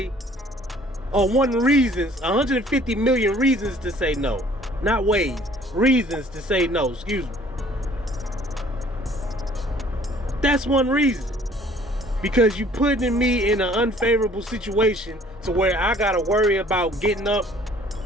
or one reasons, 150 million reasons to say no. Not ways, reasons to say no, excuse me. That's one reason. Because you putting me in an unfavorable situation to where I gotta worry about getting up,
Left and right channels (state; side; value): normal; both; correlation 0.55